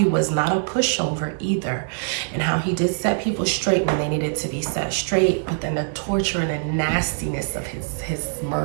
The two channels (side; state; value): left; silent; digital silence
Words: was not a pushover either, and how he did set people straight when they needed to be set straight, but then the torture and the nastiness of his